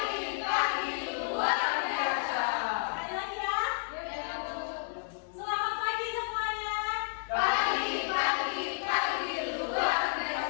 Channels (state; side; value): silent; right; digital silence